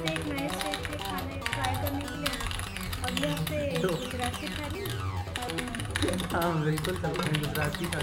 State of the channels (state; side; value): identical; both; correlation 1.00